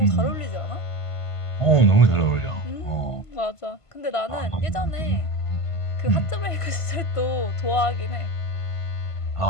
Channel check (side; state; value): right; late; 1.5 ms